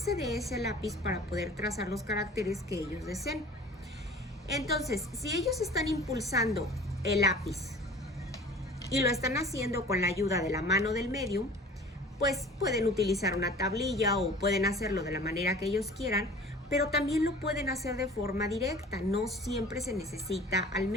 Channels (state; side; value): normal; both; correlation 0.44